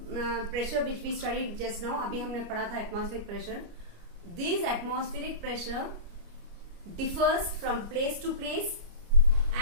pressure which we studied just now, अभी हमने पढ़ा था atmospheric pressure. This atmospheric pressure differs from place to place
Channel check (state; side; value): late; left; 29 ms